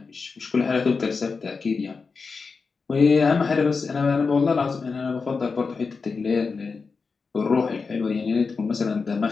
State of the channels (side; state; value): right; quieter; 4.8 dB